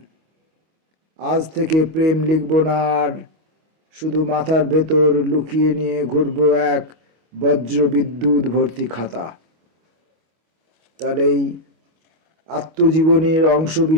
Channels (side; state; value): left; late; 25 ms